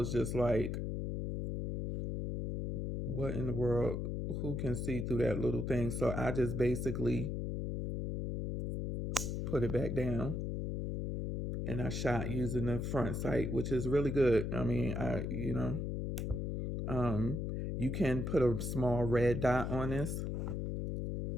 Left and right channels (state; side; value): noise; left; hum, 2 dB below the sound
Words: just like, What in the world? Who can see through that little thing? So I just basically put it back down, and I shot using the front sight, which is really good. I mean, um, you can put a small red dot on this